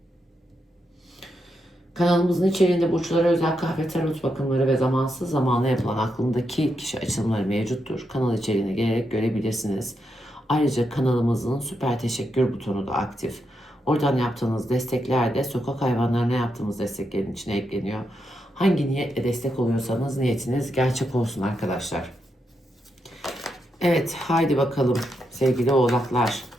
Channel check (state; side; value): normal; both; correlation 0.83